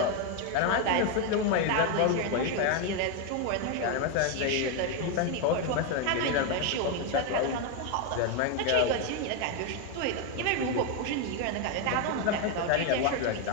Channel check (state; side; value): different; both; correlation 0.01